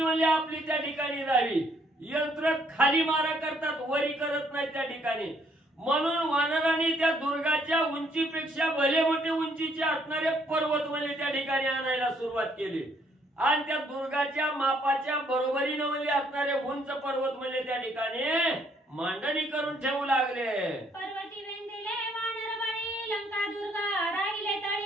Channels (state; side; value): normal; both; correlation 0.67